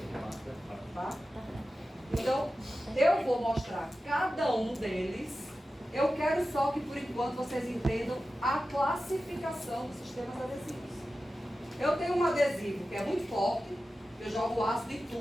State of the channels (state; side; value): normal; both; correlation 0.93